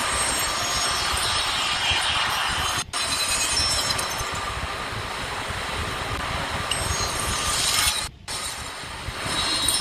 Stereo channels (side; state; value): both; identical; correlation 1.00